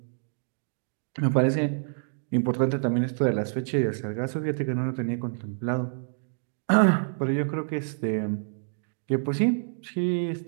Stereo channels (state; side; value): silent; left; digital silence